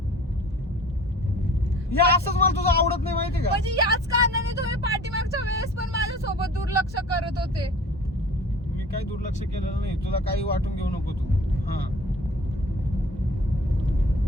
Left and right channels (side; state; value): both; normal; correlation 0.46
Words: या असंच मला तुझं आवडत नाही माहिती का? म्हणजे याच कारणाने तुम्ही पाठीमागच्या वेळेस पण माझ्यासोबत दुर्लक्ष करत होते. मी काही दुर्लक्ष केलेलं नाही, तुला काही वाटून घेऊ नको तू. हा